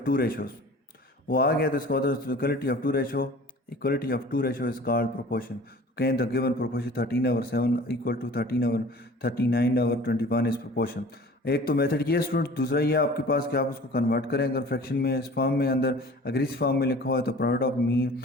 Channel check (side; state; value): both; normal; correlation 0.45